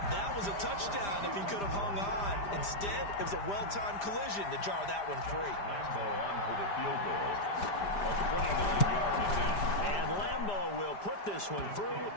That was a touchdown if he could have hung on. Instead, it was a well-timed collision to jar that one free. Lambo on for the field goal. A 29-yard attempt. And Lambo will put this one through.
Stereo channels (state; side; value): late; right; 5.0 ms